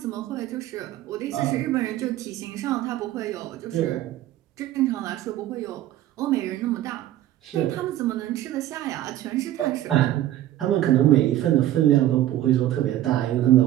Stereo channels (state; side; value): quieter; left; 13.5 dB